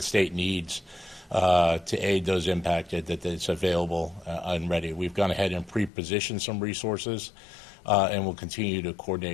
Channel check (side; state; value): right; drops out; at 5.9 s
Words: state needs to aid those impacted, that it's available and ready. We've gone ahead and pre-positioned some resources and we'll continue to